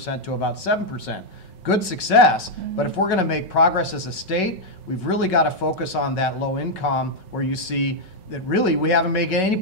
to about 7%. Good success, but if we're going to make progress as a state, we've really got to focus on that low income, where you see that really we haven't made any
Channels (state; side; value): late; right; 5.4 ms